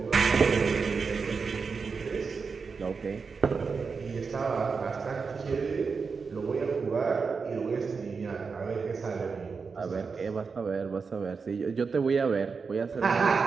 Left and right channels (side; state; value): left; quieter; 5.1 dB